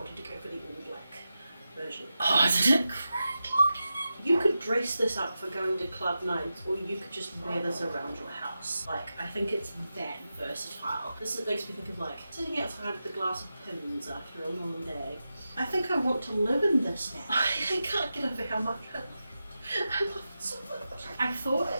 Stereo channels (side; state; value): both; inverted; correlation -0.91